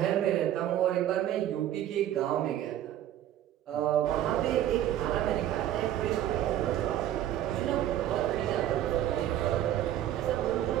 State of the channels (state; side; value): quieter; left; 12.1 dB